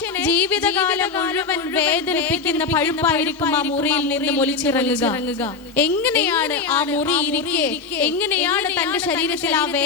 ജീവിതകാലം മുഴുവൻ വേദനിപ്പിക്കുന്ന പഴുപ്പായിരിക്കും ആ മുറിയിൽ നിന്ന് ഒലിച്ചിറങ്ങുക. എങ്ങനെയാണ് ആ മുറി ഇരിക്കെ, എങ്ങനെയാണ് തന്റെ ശരീരത്തിൽ ആ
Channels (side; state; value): right; quieter; 4.7 dB